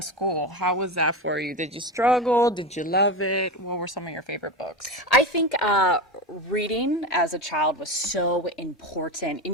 How was that for you? Did you struggle? Did you love it? What were some of your favorite books? I think reading as a child was so important.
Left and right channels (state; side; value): normal; both; correlation 0.20